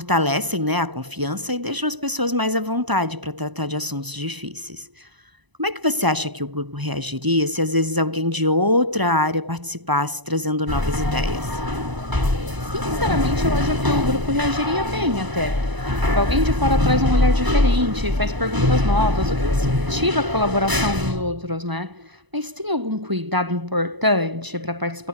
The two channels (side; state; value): left; late; 1.0 ms